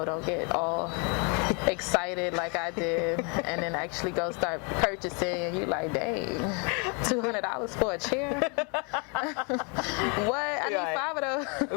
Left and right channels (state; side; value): quieter; right; 34.8 dB